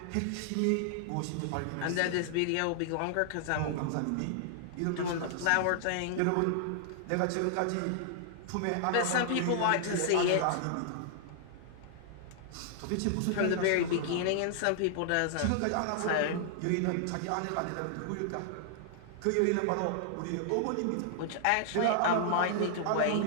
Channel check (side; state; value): both; different; correlation -0.01